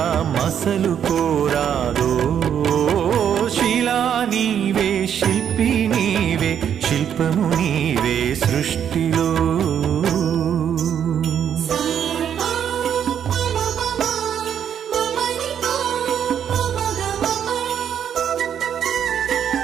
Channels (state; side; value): quieter; left; 8.9 dB